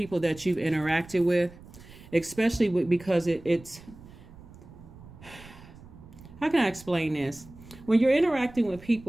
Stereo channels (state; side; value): noise; right; rumble, 19 dB below the sound